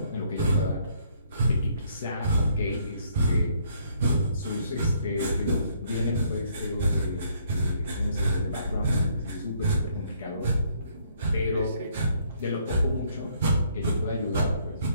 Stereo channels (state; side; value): inverted; both; correlation -0.67